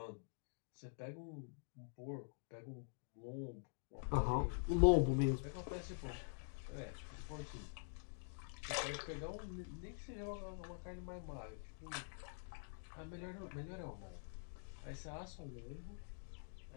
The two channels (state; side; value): silent; right; digital silence